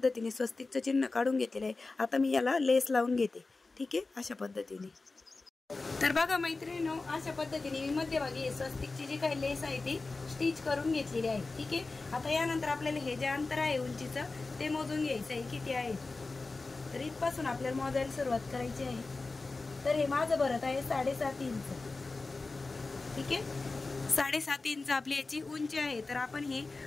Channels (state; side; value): quieter; right; 3.6 dB